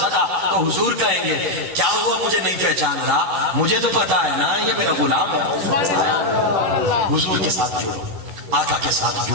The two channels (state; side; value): late; left; 11 ms